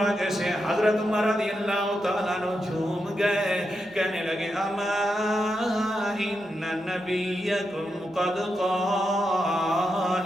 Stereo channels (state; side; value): normal; both; correlation 0.85